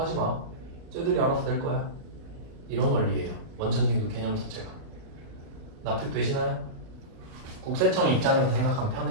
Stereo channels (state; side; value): late; left; 37 ms